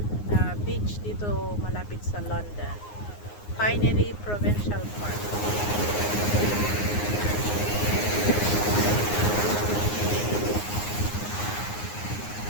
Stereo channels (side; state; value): right; late; 9.6 ms